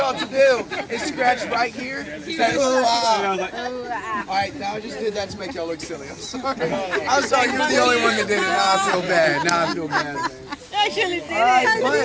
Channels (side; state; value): both; identical; correlation 1.00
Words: to do is scratch right here. Say, ooh, ah. Alright, now I just did that to make y'all look silly. I'm sorry. I'm sorry, you're the only one that did it. Now I feel bad. Now I feel bad, man.